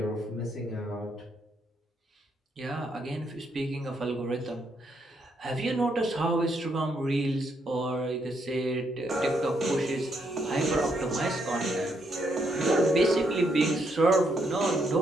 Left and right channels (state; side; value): normal; both; correlation 0.75